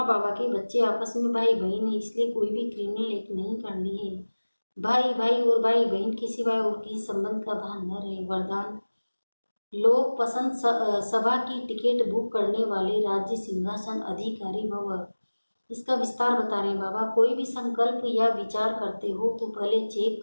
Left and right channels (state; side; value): inverted; both; correlation -1.00